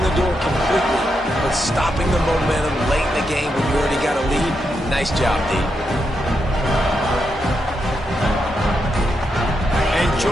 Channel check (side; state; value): both; normal; correlation 0.83